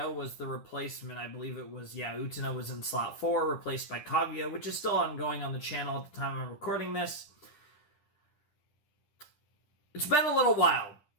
was the replacement. I believe it was, Utena was in slot 4, replaced by Kaguya, which is still ongoing on the channel at the time I'm recording this. It's been a little while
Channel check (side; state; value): right; late; 10 ms